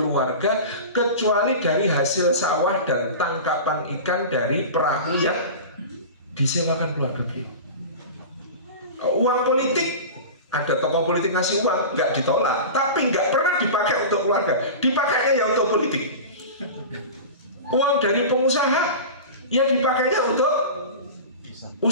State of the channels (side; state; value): both; inverted; correlation -0.31